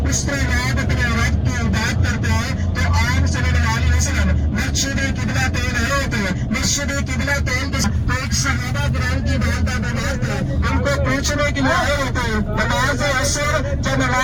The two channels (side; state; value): both; identical; correlation 1.00